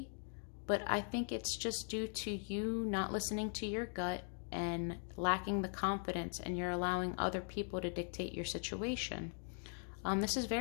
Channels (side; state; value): right; silent; 51 dB below the other